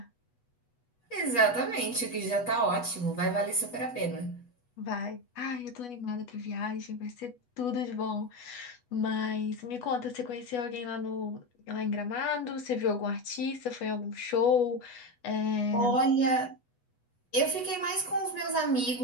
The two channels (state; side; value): late; right; 8.2 ms